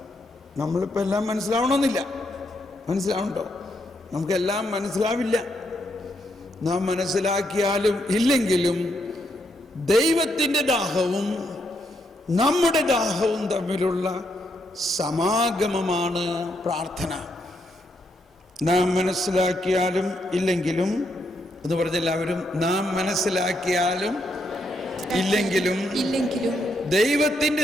നമ്മളിപ്പോൾ എല്ലാം മനസ്സിലാവണമെന്നില്ല. മനസ്സിലാവുന്നുണ്ടോ? നമുക്കെല്ലാം മനസ്സിലാവില്ല. നാം മനസ്സിലാക്കിയാലും ഇല്ലെങ്കിലും ദൈവത്തിൻ്റെ ദാഹവും നമ്മുടെ ദാഹവും തമ്മിലുള്ള സമാഗമമാണ് പ്രാർത്ഥന. നാം മനസ്സിലാക്കിയാലും ഇല്ലെങ്കിലും എന്ന് പറഞ്ഞെല്ലാവരും, നാം മനസ്സിലാക്കിയാലും ഇല്ലെങ്കിലും ദൈവത്തിൻ്റെ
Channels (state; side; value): normal; both; correlation 0.78